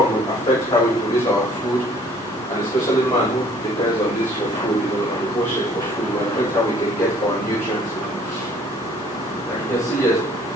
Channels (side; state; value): both; normal; correlation 0.57